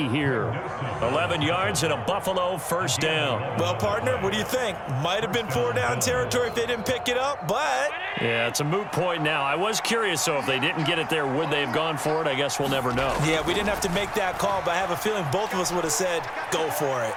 here. 11 yards and a Buffalo first down. Well, partner, what do you think? Might have been 4-down territory if they didn't pick it up, but... Yeah, it's a moot point now. I was curious, so if they didn't get it there, would they have gone for it? I guess we'll never know. Yeah, we didn't have to make that call, but I have a feeling both of us would have said, go for it.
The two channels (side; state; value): both; identical; correlation 1.00